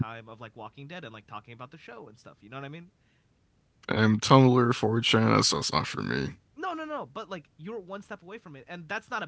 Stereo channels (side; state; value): both; identical; correlation 1.00